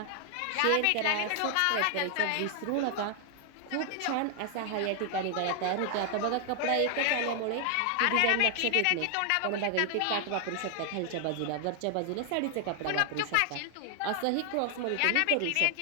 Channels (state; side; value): different; both; correlation 0.00